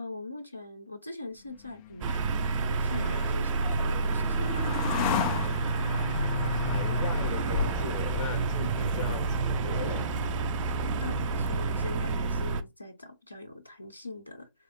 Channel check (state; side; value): inverted; both; correlation -0.54